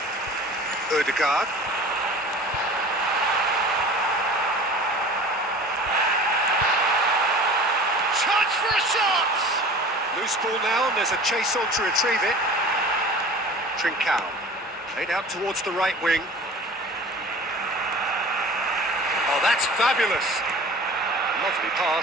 Ødegaard. Chance for a shot! Loose ball now, and there's a chase on to retrieve it. Trincao. Played out towards the right wing. Oh, that's fabulous! Lovely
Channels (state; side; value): normal; both; correlation 0.41